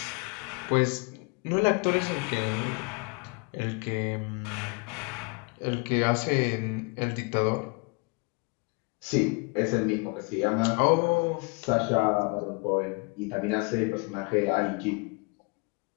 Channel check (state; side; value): quieter; right; 32.1 dB